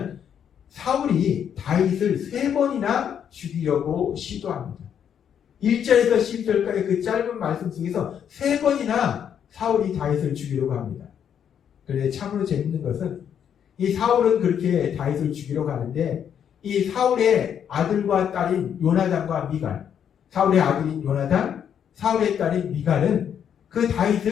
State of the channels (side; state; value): right; quieter; 8.6 dB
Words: 사울이 다윗을 3번이나 죽이려고 시도합니다. 1절에서 12절까지 그 짧은 말씀 속에서 3번이나 사울이 다윗을 죽이려고 합니다. 그런데 참으로 재밌는 것은 이 사울은 그렇게 다윗을 죽이러 가는데 이 사울의 아들과 딸인 요나단과 미갈, 사울의 아들인 요나단, 사울의 딸인 미갈은 그